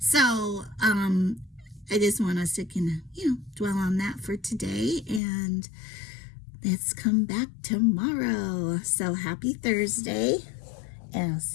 I just want us to dwell on that for today, and let's come back tomorrow. So happy Thursday, and I'll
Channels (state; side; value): drops out; right; at 5.2 s